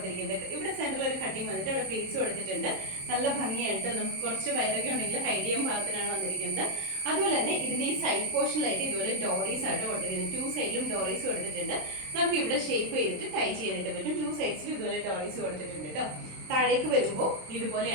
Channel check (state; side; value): late; left; 26 ms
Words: ഇവിടെ സെന്ററിൽ ഒരു കട്ടിങ് വന്നിട്ട് അവിടെ പ്ലീറ്റ്സ് കൊടുത്തിട്ടുണ്ട്. നല്ല ഭംഗിയായിട്ട് നമുക്ക് കുറച്ച് വയറൊക്കെ ഉണ്ടെങ്കിൽ ഹൈഡ് ചെയ്യാൻ പാകത്തിനാണ് വന്നിരിക്കുന്നത്. അതുപോലെ തന്നെ ഇതിന്റെ ഈ സൈഡ് പോർഷനിലായിട്ട് ഇതുപോലെ ഡോറീസ് ആയിട്ട് കൊടുത്തിരിക്കുന്നത്. 2 സൈഡിലും ഡോറീസ് കൊടുത്തിട്ടുണ്ട്. നമുക്ക് ഇവിടെ ഷേപ്പ് ചെയ്തിട്ട് ടൈ ചെയ്യാനായിട്ട് പറ്റും. 2 സൈഡ്സിലും ഇതുപോലെ ഡോറീസ് കൊടുത്തിട്ടുണ്ട് കേട്ടോ. താഴേക്ക് വരുമ്പോൾ